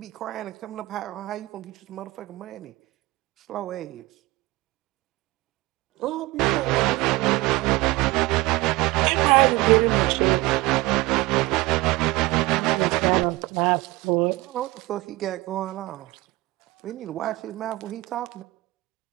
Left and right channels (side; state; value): left; quieter; 20.9 dB